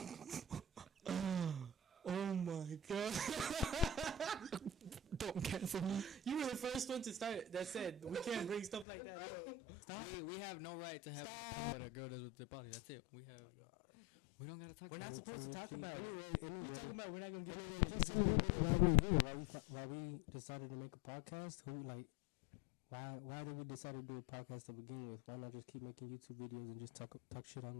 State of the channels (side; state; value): right; drops out; at 8.8 s